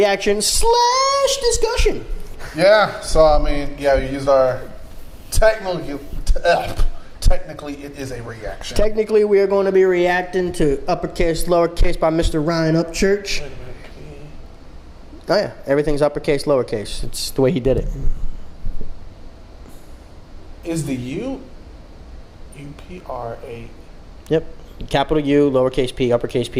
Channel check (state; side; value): identical; both; correlation 1.00